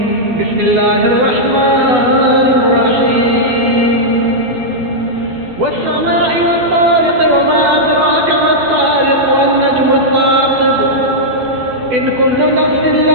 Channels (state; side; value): late; left; 12 ms